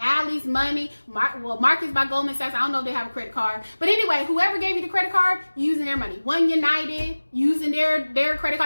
money, Marcus by Goldman Sachs. I don't know if they have a credit card. But anyway, whoever gave you the credit card, you're using their money. One United, using their credit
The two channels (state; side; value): inverted; both; correlation -1.00